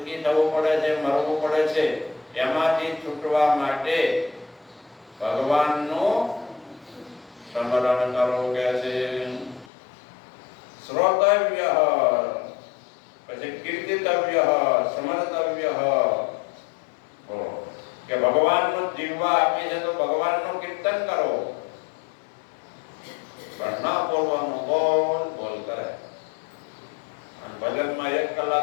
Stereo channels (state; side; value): drops out; right; at 9.7 s